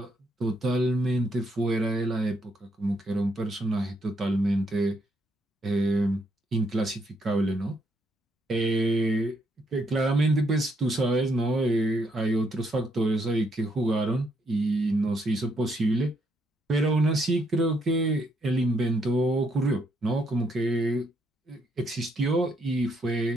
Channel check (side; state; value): both; normal; correlation 0.74